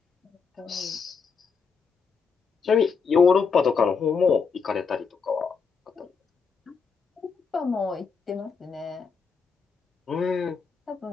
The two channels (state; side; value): quieter; right; 5.5 dB